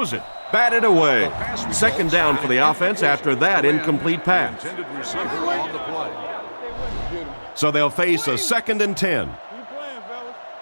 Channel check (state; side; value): inverted; both; correlation -1.00